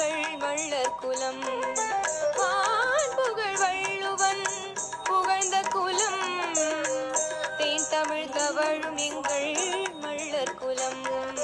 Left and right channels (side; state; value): both; identical; correlation 1.00